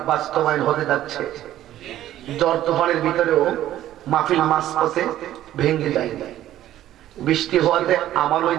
বাস্তবায়ন হতে যাচ্ছে। জ্বর তুফানের ভিতরেও মাহফিল মাঝপথে ভেঙে যায়, বৃষ্টি হওয়াতে আমার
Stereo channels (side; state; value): left; quieter; 13.0 dB